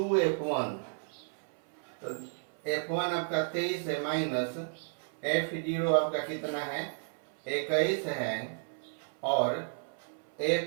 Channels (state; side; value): silent; left; 56 dB below the other